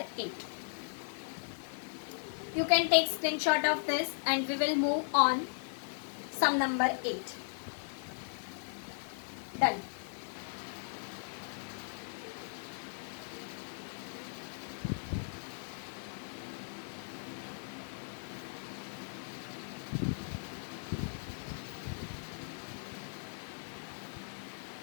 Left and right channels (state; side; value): silent; right; digital silence